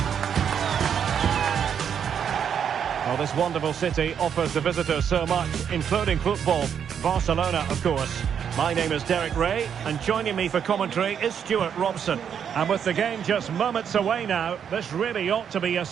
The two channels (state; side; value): quieter; left; 8.0 dB